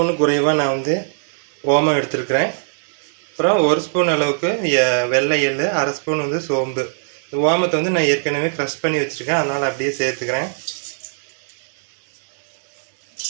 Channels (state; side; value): silent; left; 65 dB below the other